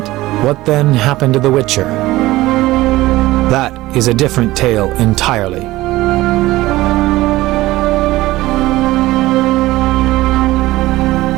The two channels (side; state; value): left; quieter; 17.7 dB